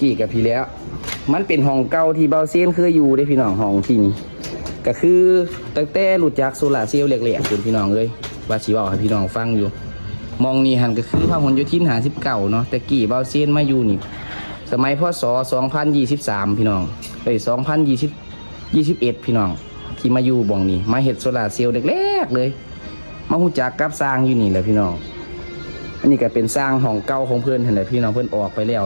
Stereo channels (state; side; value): inverted; both; correlation -1.00